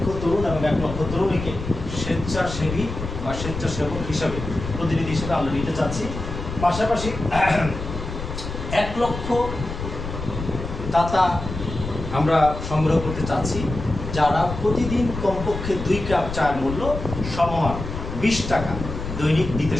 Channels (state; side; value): noise; left; rumble, 7 dB below the sound